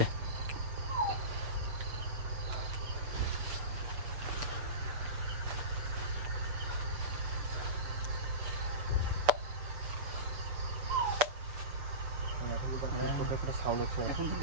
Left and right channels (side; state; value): left; late; 6.9 ms